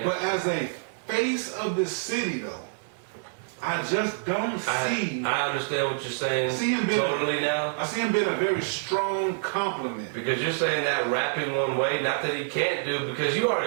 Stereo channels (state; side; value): silent; left; digital silence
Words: But as a face of the city, though, I just don't see. I understand what you're saying. See him being totally now. I see him being a very strong compliment. Because you're saying that rapping one way, not that he can't do, because you